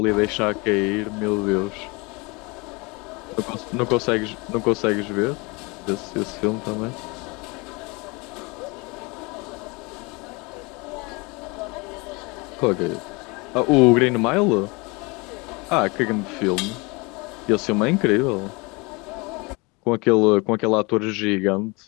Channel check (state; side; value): quieter; right; 27.2 dB